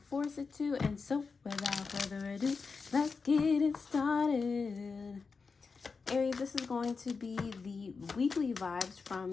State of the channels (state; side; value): quieter; right; 4.8 dB